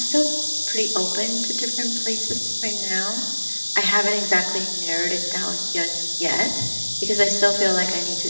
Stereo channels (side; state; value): both; inverted; correlation -1.00